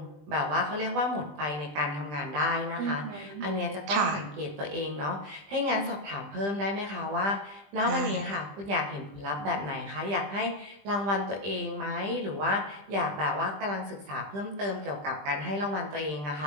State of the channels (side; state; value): left; late; 20 ms